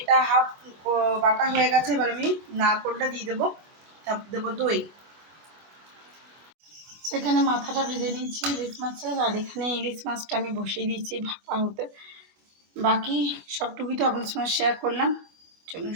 হাফ বাটা হয়ে গেছে, এবার আমি নারকোলটা দিয়ে দেবো, তারপর দেবো দই। সেখানে মাথাটা ভেজে নিয়েছি ইলিশ মাছের, আর এখানে ইলিশ মাছটা আমি বসিয়ে দিয়েছি ভাপা হতে। বাকি সবটুকুই তো আপনার সঙ্গে শেয়ার করলাম, চলুন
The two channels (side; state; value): left; late; 25 ms